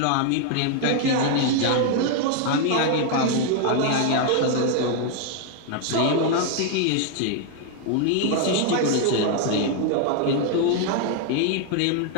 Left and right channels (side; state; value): both; different; correlation 0.00